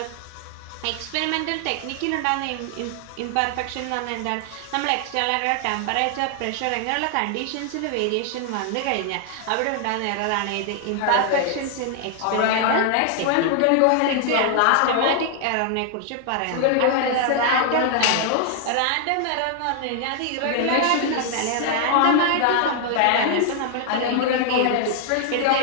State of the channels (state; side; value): different; both; correlation 0.00